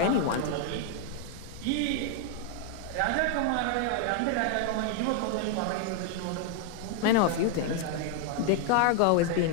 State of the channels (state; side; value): different; both; correlation 0.00